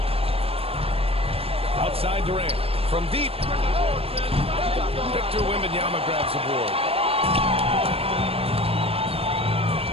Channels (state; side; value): late; left; 0.28 ms